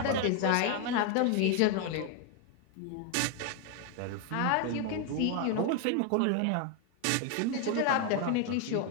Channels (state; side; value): different; both; correlation 0.01